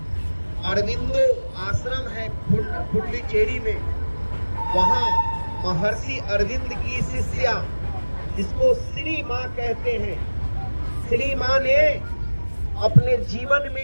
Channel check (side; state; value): both; inverted; correlation -1.00